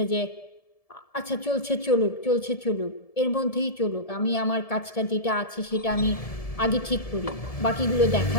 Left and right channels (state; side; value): late; right; 1.7 ms